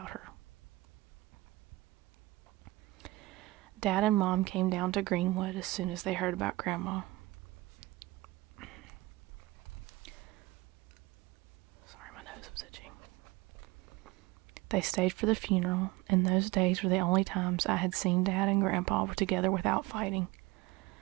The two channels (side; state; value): left; quieter; 20.3 dB